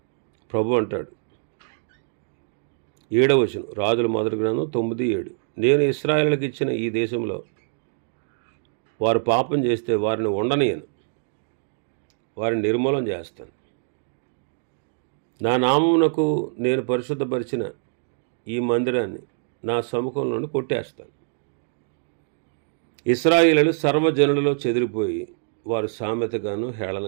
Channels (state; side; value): silent; left; digital silence